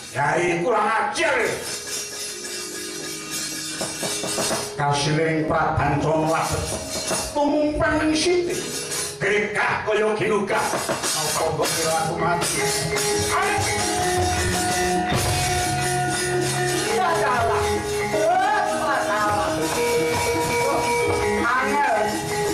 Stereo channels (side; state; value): both; identical; correlation 1.00